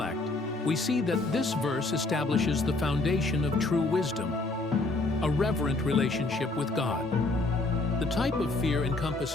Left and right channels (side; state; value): right; quieter; 3.1 dB